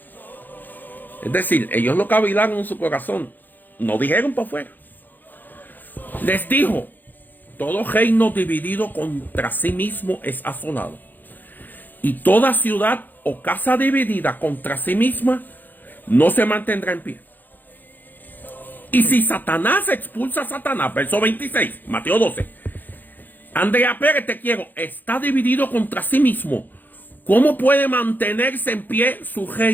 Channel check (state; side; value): late; right; 0.087 ms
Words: es decir, ellos lo cavilaron en su corazón, no dijeron para afuera. Les dijo, todo reino dividido contra sí mismo es asolado, y toda ciudad o casa dividida contra sí misma no se mantendrá en pie. Y si Satanás expulsa a Satanás, verso 26, Mateo 12, Andrea Pérez, te quiero, está dividido contra sí mismo, ¿cómo puede mantenerse en pie su